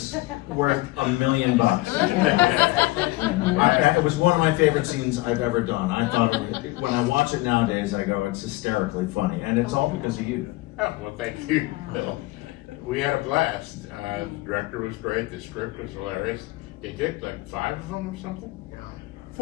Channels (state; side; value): quieter; right; 20.4 dB